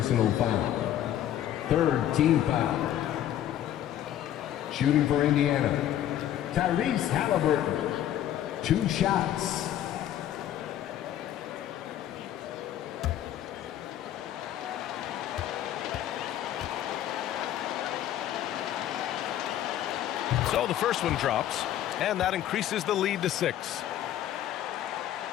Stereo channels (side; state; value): right; quieter; 11.7 dB